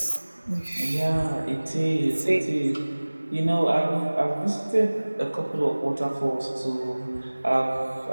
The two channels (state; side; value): inverted; both; correlation -1.00